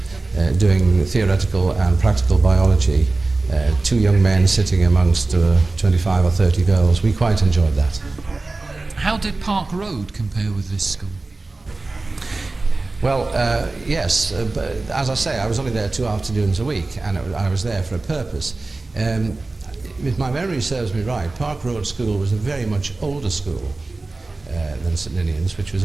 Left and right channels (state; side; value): quieter; left; 3.3 dB